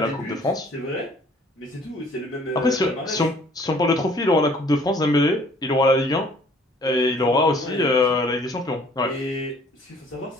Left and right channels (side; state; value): both; normal; correlation 0.56